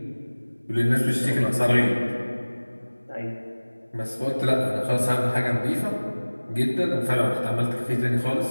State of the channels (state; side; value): inverted; both; correlation -1.00